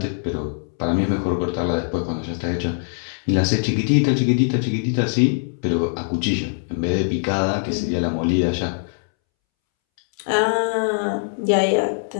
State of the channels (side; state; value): right; silent; 64 dB below the other